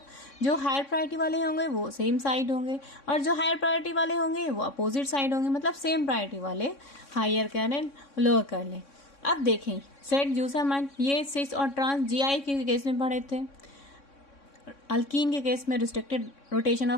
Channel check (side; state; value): right; late; 3.6 ms